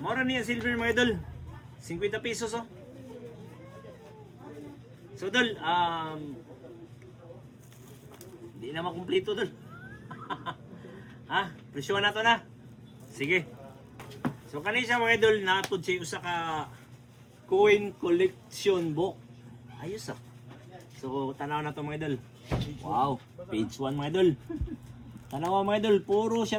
Maura niya silver mga idol. 50 pesos oh. So dol, hindi na makumpleto dol. Ha? Presyon na to na. Sige. So kanina siya mga idol, natod siya usa ka coin collection book. Ayos ah. So tanaw na to mga idol. Wow, page 1 mga idol. Tanaw mga idol, puro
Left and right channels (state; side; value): identical; both; correlation 1.00